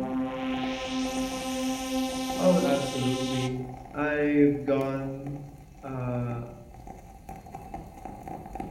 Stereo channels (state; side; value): identical; both; correlation 1.00